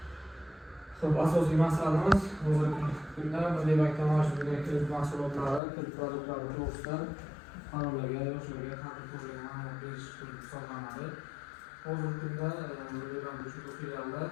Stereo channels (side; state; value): right; drops out; at 5.6 s